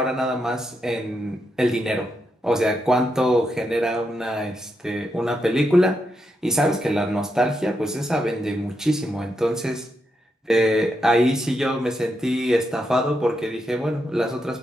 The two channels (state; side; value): normal; both; correlation 0.83